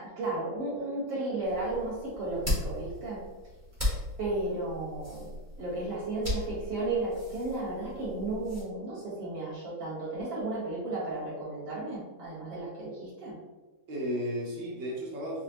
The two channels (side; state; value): left; late; 3.7 ms